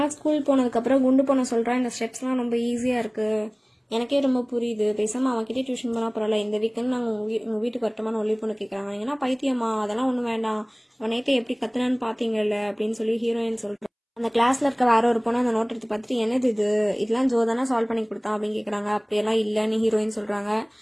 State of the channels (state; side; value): identical; both; correlation 1.00